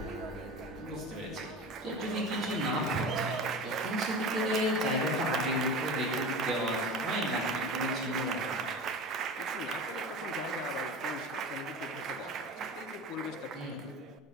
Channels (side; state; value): both; normal; correlation 0.32